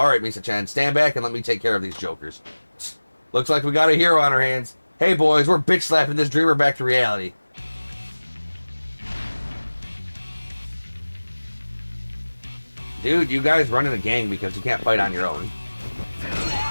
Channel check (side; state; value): both; inverted; correlation -1.00